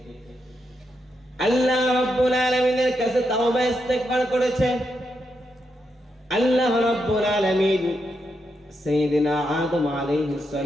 আল্লাহ রাব্বুল আলামিনের কাছে তাওবা ইস্তেগফার করেছে। আল্লাহ রাব্বুল আলামিন সাইয়েদনা আদম আলাইহিস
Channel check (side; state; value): both; normal; correlation 0.83